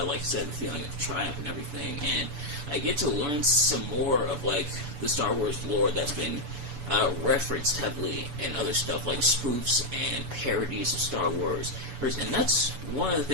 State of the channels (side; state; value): left; late; 7.0 ms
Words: I said, the feeling of triumph and everything, and I get to learn some more of the Star Wars lore that's been referenced heavily in other stuff like spoofs and parodies of Star Wars, and that's one of the